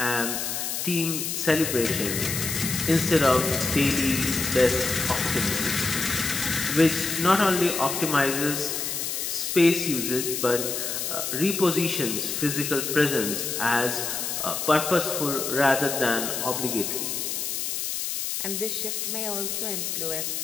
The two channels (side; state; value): left; noise; hiss, 2 dB below the sound